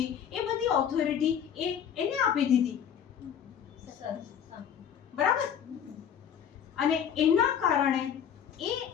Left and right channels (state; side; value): quieter; right; 8.6 dB